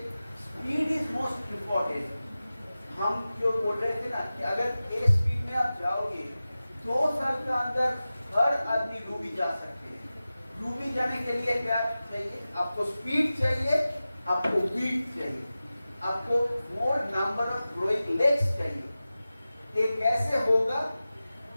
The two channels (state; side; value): inverted; both; correlation -0.95